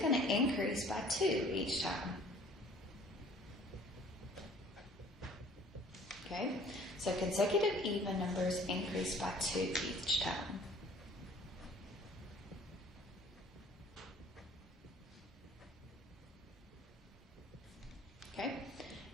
to increase by 2 each time. Okay, so consecutive even numbers increase by 2 each time. Okay,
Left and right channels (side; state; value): both; normal; correlation 0.52